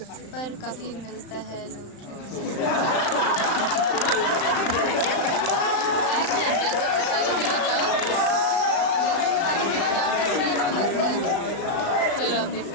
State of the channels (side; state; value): right; late; 35 ms